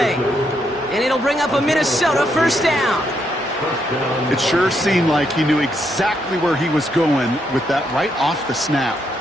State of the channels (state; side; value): normal; both; correlation 0.77